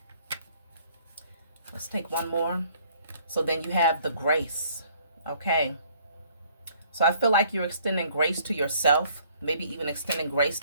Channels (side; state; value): both; inverted; correlation -0.60